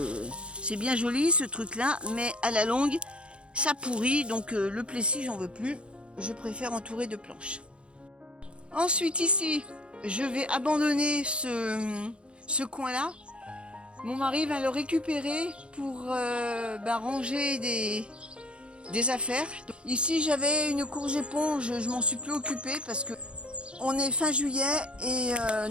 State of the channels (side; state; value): left; late; 0.057 ms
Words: c'est bien joli ce truc-là, mais à la longue, ça pourrit. Donc le plessis, j'en veux plus. Je préfère entourer de planches. Ensuite, ici, je vais abandonner ce coin-là. Mon mari va le récupérer pour ranger des affaires. Donc, ici, j'avais une courge éponge, je m'en suis plus occupée parce que on est fin juillet et